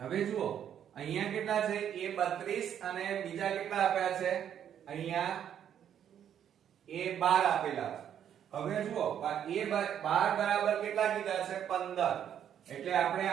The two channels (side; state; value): left; quieter; 9.5 dB